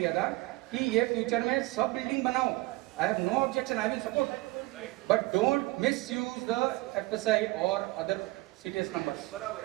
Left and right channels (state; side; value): quieter; left; 21.4 dB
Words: था कि ये फ्यूचर में सब बिल्डिंग बनाओ. I have no objection, I will support, but don't misuse the FSI और अदर सीटीएस नंबर्स.